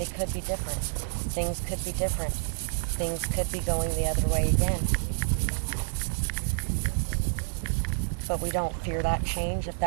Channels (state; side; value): silent; left; 59 dB below the other